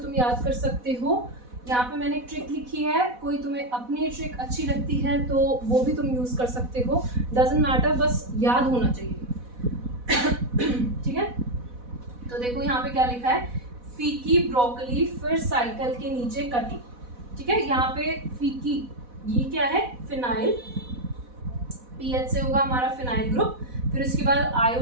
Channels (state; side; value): late; left; 4.1 ms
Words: याद कर सकते हो। यहाँ पे मैंने एक ट्रिक लिखी है, कोई तुम्हें अपनी ट्रिक अच्छी लगती है तो वो भी तुम यूज़ कर सकते हो, डजंट मैटर, बस याद होना चाहिए, ठीक है। तो देखो यहाँ पे क्या लिखा है, फीकी ब्रोकली फिर साइकिल के नीचे कटी, ठीक है। यहाँ पे फीकी ये क्या है, फिनाइल, पीएच से होगा हमारा फिनाइल ग्रुप। फिर उसके बाद